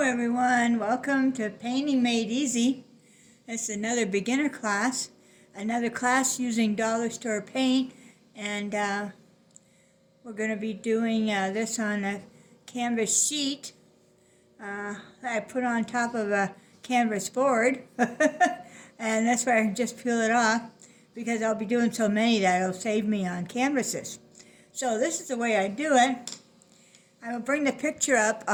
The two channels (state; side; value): identical; both; correlation 1.00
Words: welcome to Painting Made Easy. It's another beginner class, another class using dollar store paint, and we're going to be doing this on a canvas sheet that I put on top of a canvas board, and that's why I can just peel it off because I'll be doing so many that it'll save me on canvases. So this is the way I do it. I will bring the picture up